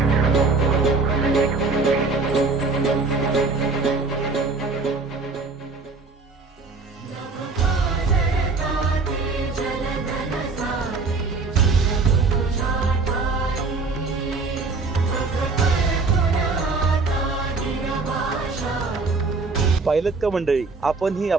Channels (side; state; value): left; quieter; 4.0 dB